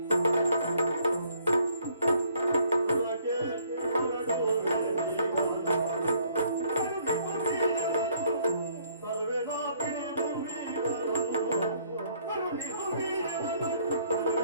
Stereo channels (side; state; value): both; inverted; correlation -0.64